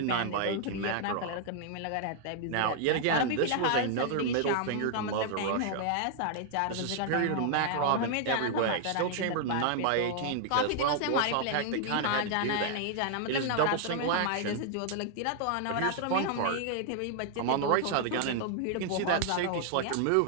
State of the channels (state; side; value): different; both; correlation 0.00